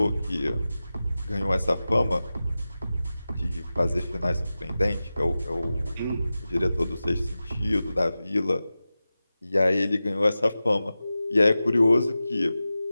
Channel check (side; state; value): both; inverted; correlation -0.94